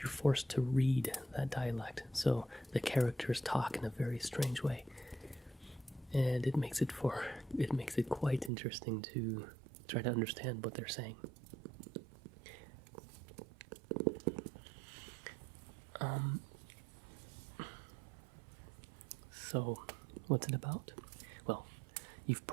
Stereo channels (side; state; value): left; drops out; at 8.5 s